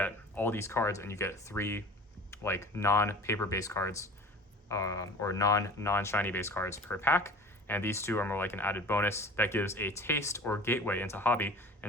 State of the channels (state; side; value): normal; both; correlation 0.42